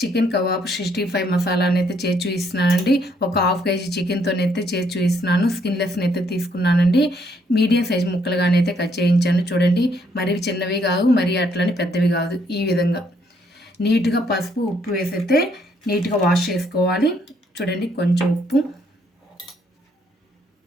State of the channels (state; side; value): normal; both; correlation 0.70